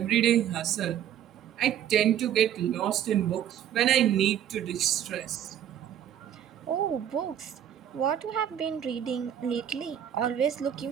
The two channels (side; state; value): left; quieter; 10.1 dB